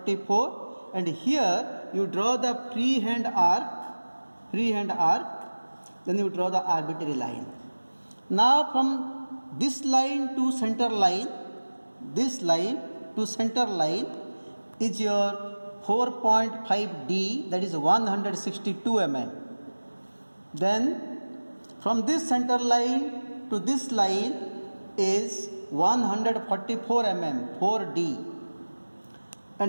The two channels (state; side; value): inverted; both; correlation -1.00